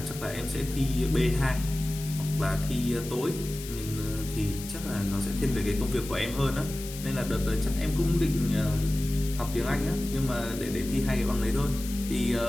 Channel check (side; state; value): left; noise; hiss, 12 dB below the sound